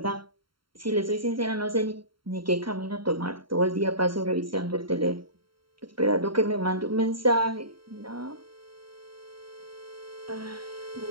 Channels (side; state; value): left; late; 0.73 ms